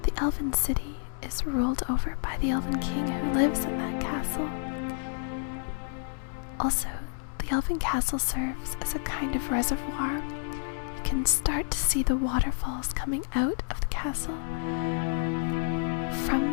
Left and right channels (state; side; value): silent; right; digital silence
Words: The Elven City is ruled over by the Elven King who lives in that castle. Also, the Elven Castle serves as a kind of reservoir. You can start to see the waterfalls coming out of the castle.